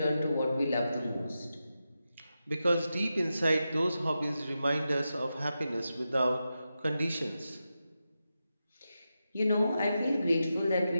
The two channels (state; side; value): inverted; both; correlation -0.90